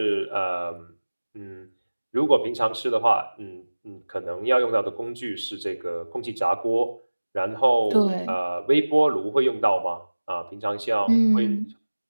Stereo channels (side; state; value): both; inverted; correlation -1.00